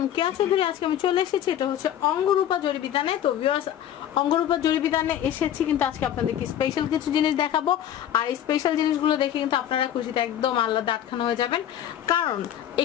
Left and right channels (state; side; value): quieter; right; 10.9 dB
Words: কেয়া চৌধুরী। আজকে আমি চলে এসেছি, এটা হচ্ছে অঙ্গরূপা জরিবিতানে। তো ভিউয়ার্স, অঙ্গরূপা জরিবিতানে এসেছি, কিন্তু আজকে আপনাদেরকে স্পেশাল কিছু জিনিস দেখাবো। আর এই স্পেশাল জিনিসগুলো দেখে কিন্তু আপনারা খুশিতে একদম আলাদা আটখানা হয়ে যাবেন, কারণ